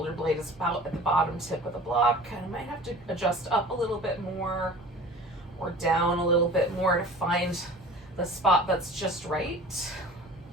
blade is about at the bottom tip of the block. I might have to adjust up a little bit more or down a little bit more to find the spot that's just right.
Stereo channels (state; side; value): normal; both; correlation 0.42